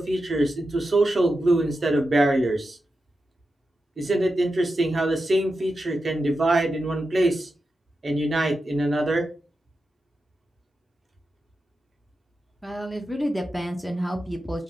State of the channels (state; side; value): normal; both; correlation 0.89